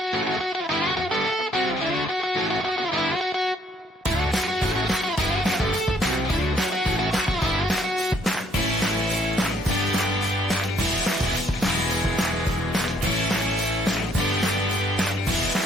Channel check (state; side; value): normal; both; correlation 0.67